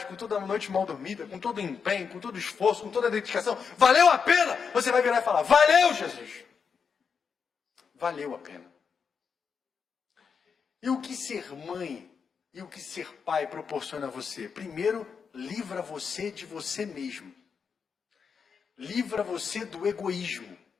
com toda a noite mal dormida, com todo o empenho, com todo o esforço, com toda a dedicação, valeu a pena? Você vai virar e falar, valeu, Jesus! Valeu a pena. E o que ser mãe e o que ser pai proporciona a você? Primeiro, livra você de você mesmo. Livra você do egoísmo.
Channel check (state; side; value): quieter; right; 6.1 dB